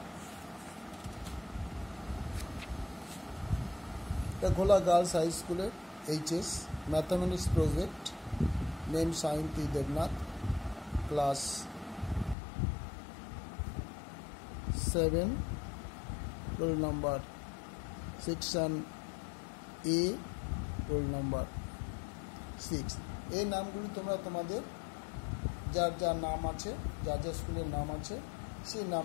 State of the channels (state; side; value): drops out; right; at 12.4 s